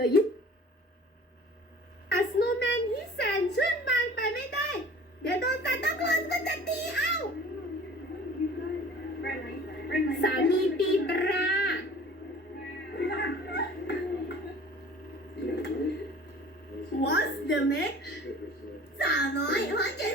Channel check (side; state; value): both; normal; correlation 0.46